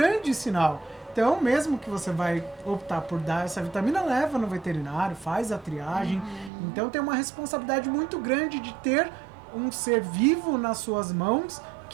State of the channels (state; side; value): drops out; left; at 6.5 s